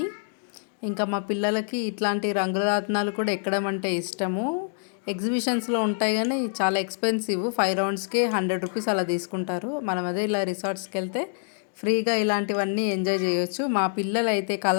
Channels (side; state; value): right; silent; digital silence